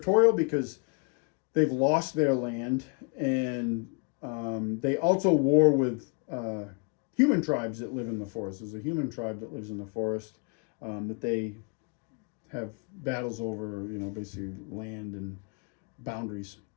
because they've lost their land, and they also war with human tribes that live in the forest. There's a human tribe that lives in the forest that they have battles over, basically land and boundaries.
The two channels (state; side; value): quieter; right; 34.4 dB